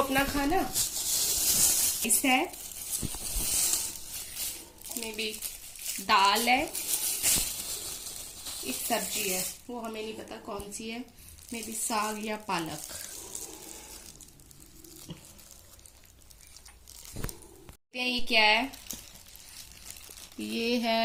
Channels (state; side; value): identical; both; correlation 1.00